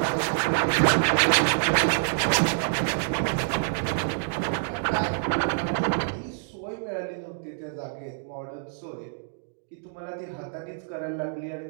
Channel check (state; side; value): silent; left; digital silence